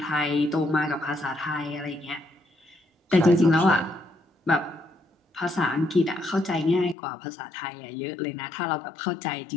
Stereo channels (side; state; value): right; drops out; at 7.0 s